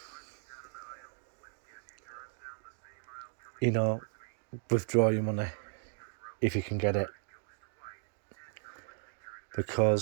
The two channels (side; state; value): left; silent; 54 dB below the other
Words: withdraw your money if you can get it,